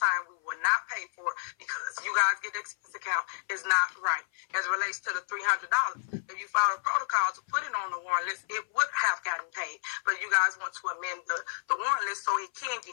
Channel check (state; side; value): silent; right; 55 dB below the other